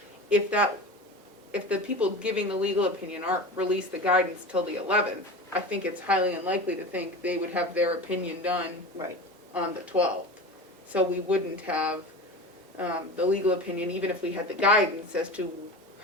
If the people giving the legal opinion aren't released the guidance till the 11th, I think it's highly unlikely to think they would have their opinion done Right. on the 12th. So we wouldn't have the legal opinion, even if we had the guidance as to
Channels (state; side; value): normal; both; correlation 0.31